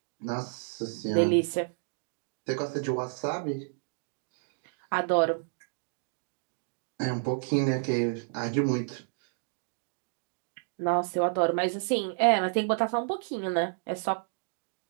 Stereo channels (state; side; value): silent; left; digital silence